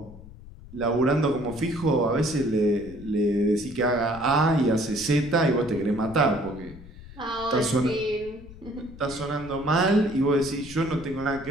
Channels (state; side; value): noise; left; rumble, 17 dB below the sound